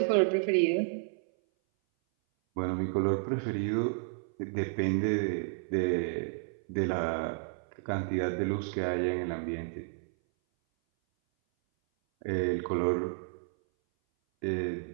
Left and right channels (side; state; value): left; silent; 57 dB below the other